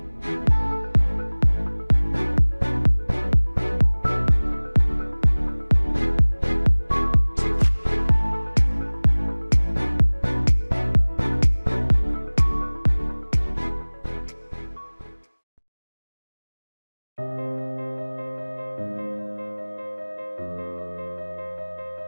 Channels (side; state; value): both; inverted; correlation -1.00